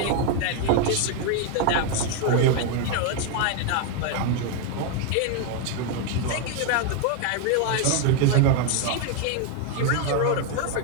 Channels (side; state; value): both; different; correlation 0.01